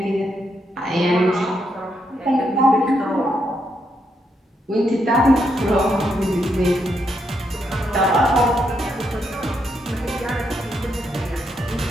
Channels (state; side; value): normal; both; correlation 0.79